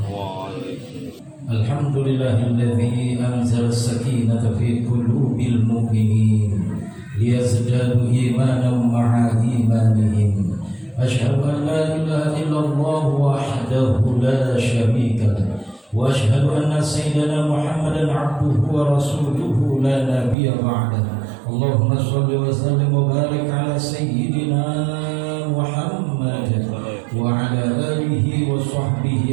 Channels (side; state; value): left; drops out; at 20.4 s